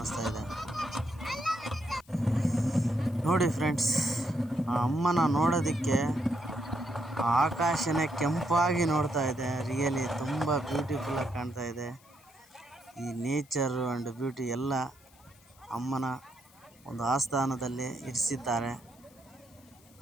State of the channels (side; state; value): left; noise; hiss, 28 dB below the sound